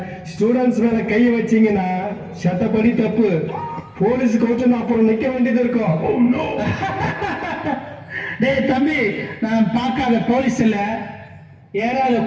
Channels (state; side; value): identical; both; correlation 1.00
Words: ஸ்டூடெண்ட்ஸ் மேல கையை வச்சீங்கன்னா சட்டப்படி தப்பு. போலீஸ் கோர்ட்டு அப்புறம் நிக்க வேண்டியது இருக்கும். டேய் தம்பி, நான் பார்க்காத போலீஸ் இல்ல, ஏறாத